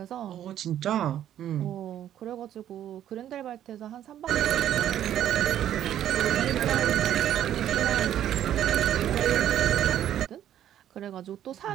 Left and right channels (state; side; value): quieter; left; 11.1 dB